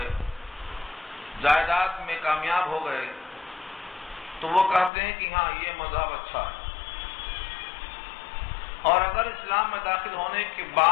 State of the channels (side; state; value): right; drops out; at 4.9 s